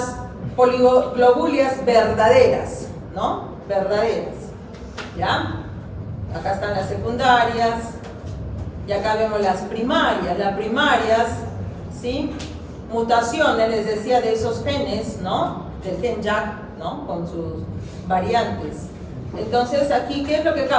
poliglobulias verdaderas, ¿no? Verdaderas, ¿ya? Acá están las secundarias, y acá vemos las primarias. Las primarias, ¿sí? Mutaciones, les decía, de esos genes, ¿no? Del gen JAK, ¿no? Con sus variantes. Entonces, aquí, ¿qué es lo que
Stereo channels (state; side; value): identical; both; correlation 1.00